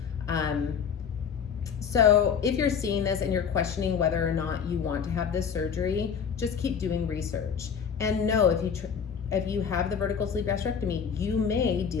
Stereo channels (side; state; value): right; quieter; 7.0 dB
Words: So if you're seeing this and you're questioning whether or not you want to have this surgery, just keep doing research. And know if you have the vertical sleeve gastrectomy, you may